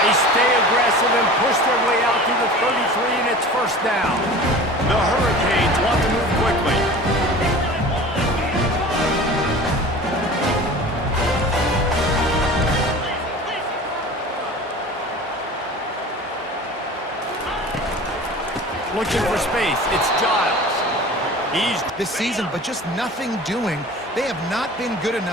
They stay aggressive and push their way out to the 33, and it's 1st down. The Hurricanes want to move quickly. Looking for space. It's Giles. He's this season, but just nothing doing. They have not been good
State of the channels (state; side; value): normal; both; correlation 0.39